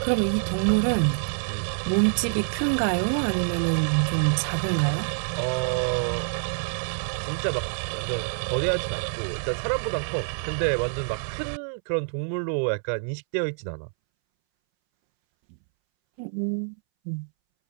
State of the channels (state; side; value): silent; left; 61 dB below the other